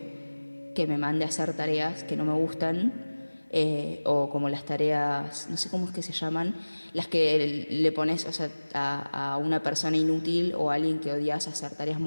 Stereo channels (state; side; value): inverted; both; correlation -1.00